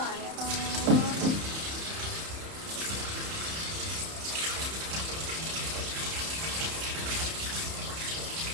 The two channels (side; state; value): left; late; 31 ms